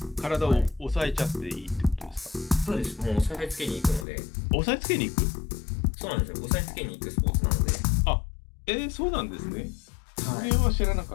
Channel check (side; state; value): right; drops out; at 4.0 s